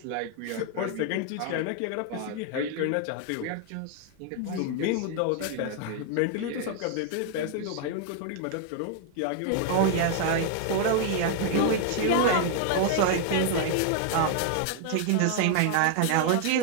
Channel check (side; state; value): both; different; correlation 0.00